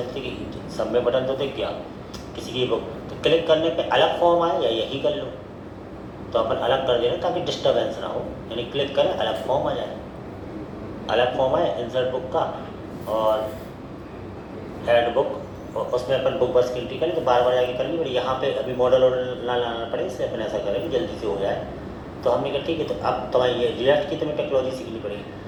है कि सब में बटन तो दिख गया किसी की बुक, तो क्लिक करने पे अलग फॉर्म आए या यही कर लो, तो अपन अलग कर देना ताकि डिस्टर्बेंस ना हो, यानी क्लिक करें अलग फॉर्म आ जाए, अलग फॉर्म आए इंसर्ट बुक का और ऐड बुक, और उसमें अपन बुक बस एंट्री करें तो बार बार जाके करनी पड़ेगी, यहाँ पे अभी मॉडल ना लाना पड़े, इसलिए अपन ऐसा करें कि जल्दी से हो जाए। तो हमने कहा ठीक है, तो अब तुम्हारी ये रिएक्ट की तुम्हें टेक्नोलॉजी सीखनी पड़ेगी,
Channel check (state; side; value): identical; both; correlation 1.00